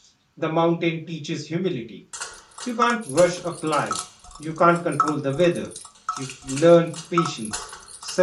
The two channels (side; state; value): both; identical; correlation 1.00